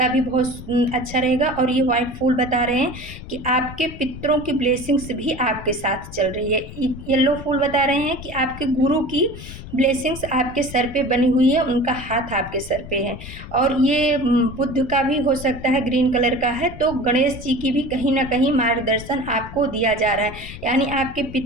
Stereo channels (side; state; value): left; noise; rumble, 13 dB below the sound